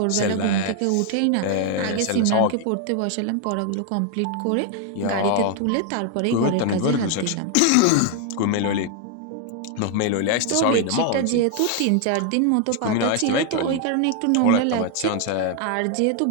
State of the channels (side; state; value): both; different; correlation 0.00